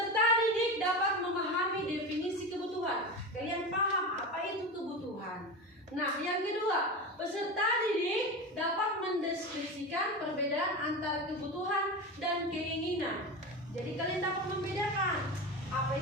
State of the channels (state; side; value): normal; both; correlation 0.24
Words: didik dapat memahami definisi kebutuhan. Kalian paham apa itu kebutuhan. Nah, yang kedua, peserta didik dapat mendeskripsikan perbedaan antara kebutuhan dan keinginan. Jadi kalian dapat membedakan apa